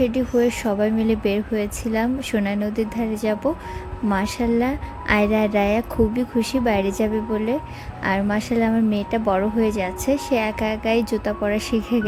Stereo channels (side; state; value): both; identical; correlation 1.00